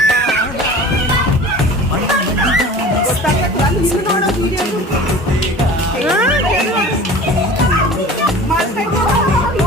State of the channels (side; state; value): both; normal; correlation 0.40